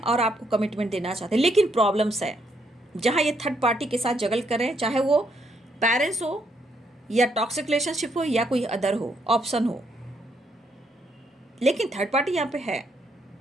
और आपको कमिटमेंट देना चाहते हैं। लेकिन प्रॉब्लम्स है जहाँ ये थर्ड पार्टी के साथ जगल कर रहे हैं, चाहे वो पेरेंट्स हो या टॉक्सिक रिलेशनशिप हो या कोई अदर हो ऑप्शन हो, लेकिन थर्ड पार्टी यहाँ पे है।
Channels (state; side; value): normal; both; correlation 0.74